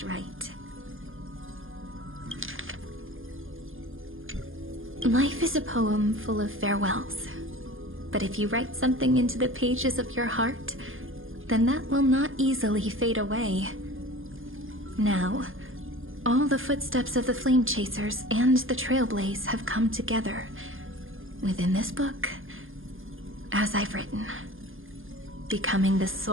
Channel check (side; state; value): left; late; 0.59 ms